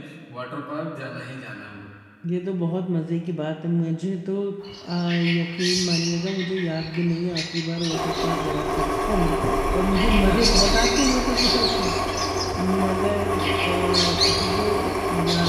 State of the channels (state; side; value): identical; both; correlation 1.00